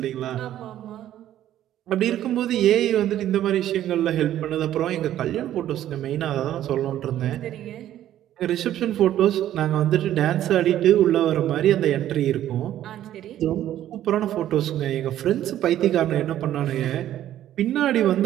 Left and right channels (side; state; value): left; quieter; 12.2 dB